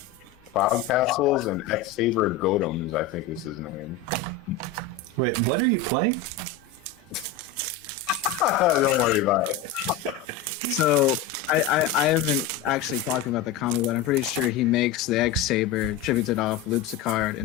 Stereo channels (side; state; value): right; quieter; 6.8 dB